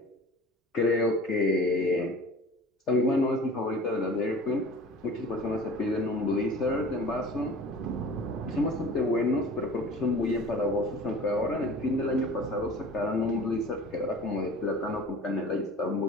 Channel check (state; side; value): normal; both; correlation 0.42